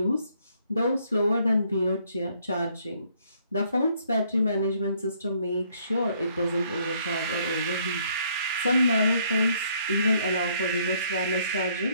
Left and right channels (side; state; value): both; inverted; correlation -0.66